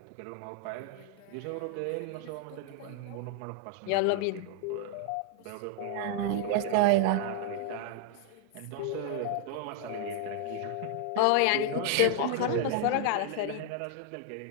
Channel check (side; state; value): both; different; correlation 0.00